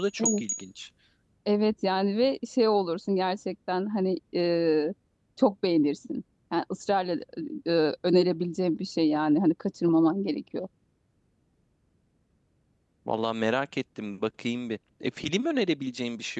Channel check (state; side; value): identical; both; correlation 1.00